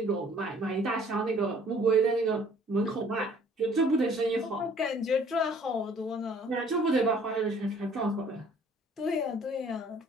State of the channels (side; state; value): both; normal; correlation 0.56